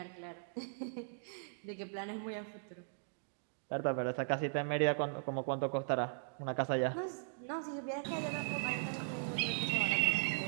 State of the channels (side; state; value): left; silent; digital silence